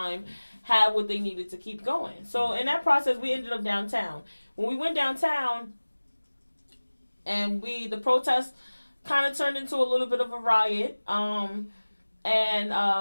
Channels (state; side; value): inverted; both; correlation -1.00